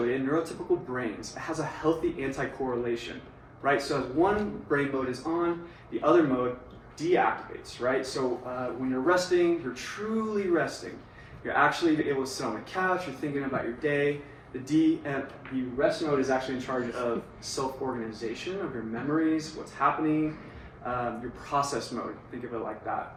in neurotypical brains, it has a healthy anti-correlation, right? So as one brain mode is on, the other mode deactivates, right? So when you're resting, you're truly resting. You're actually able to sit on the couch, you're thinking about your day. The rest mode is actually in charge of self-organization of your memories, what's happening, your process mode, think of it like that,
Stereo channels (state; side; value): identical; both; correlation 1.00